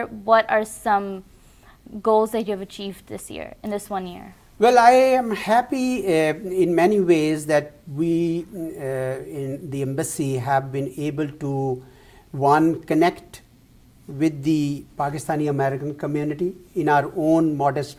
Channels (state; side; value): identical; both; correlation 1.00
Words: what are some goals that you have achieved this year, in this 1 year? Well, I am happy in many ways that we in the embassy have been able to, one, connect with the Pakistani American community in our own